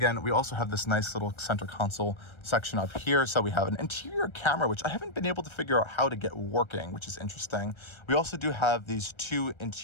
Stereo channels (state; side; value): late; right; 1.3 ms